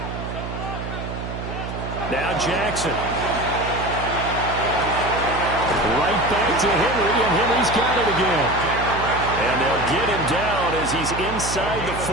Now Jackson. Right back to Henry, and Henry's got it again. And they'll get him down as he's inside the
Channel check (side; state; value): right; noise; hum, 7 dB below the sound